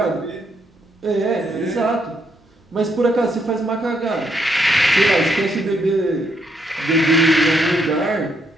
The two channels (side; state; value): both; normal; correlation 0.75